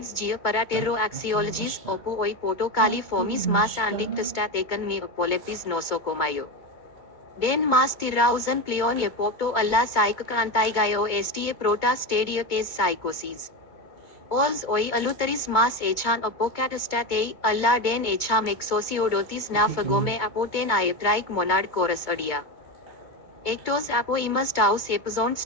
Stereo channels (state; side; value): late; right; 2.2 ms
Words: gia paratero axiologies, opo oi potokali formis mas andictestatecan me apolepis nosocomayo. Den mas tirausan pleon epopto alla psychic antigaio sta prota stadia tes psychosis. Ols oi aluteris mas echan apocatastatei, alla den echam exosiodotis na fagome apoten iatric monad chorus adia. Ectos apoimus taus epizon